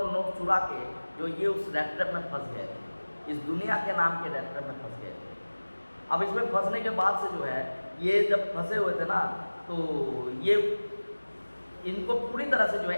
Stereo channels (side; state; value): both; inverted; correlation -1.00